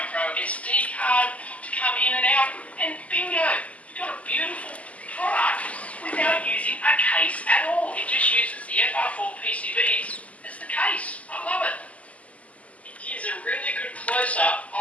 SD card to come in and out, and bingo, you've got a beautiful product without using a case at all. It just uses the FR4 PCBs as the case. I love it. Here's a really good close-up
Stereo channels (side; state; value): right; late; 0.069 ms